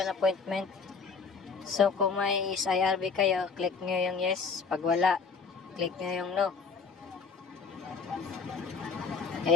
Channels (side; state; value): right; quieter; 5.2 dB